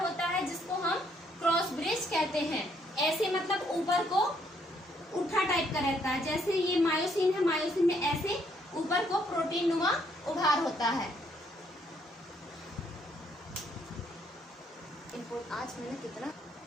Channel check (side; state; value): both; normal; correlation 0.70